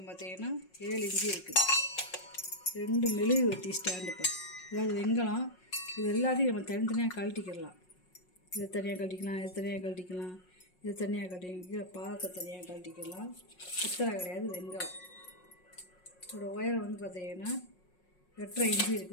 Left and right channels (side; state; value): right; late; 5.5 ms